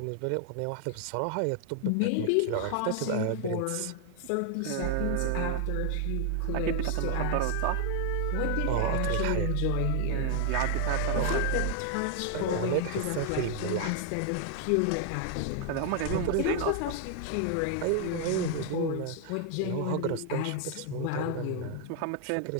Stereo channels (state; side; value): different; both; correlation 0.00